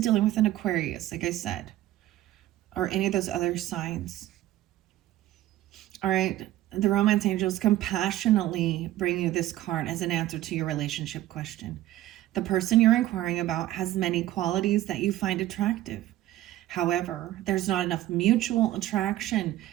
with an Aquarius, like I said, or any of those other signs. All right. The romance angels compassionately bring you this card as an answer to your relationship question. The person you're inquiring about has many qualities that you find attractive. However, there's not enough mutual attraction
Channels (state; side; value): quieter; left; 14.5 dB